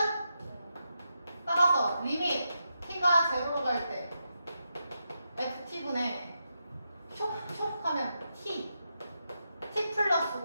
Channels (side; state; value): both; inverted; correlation -0.86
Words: 따라서 리밋 t가 제로로 갈 때 ft분의 촉 하면 t 플러스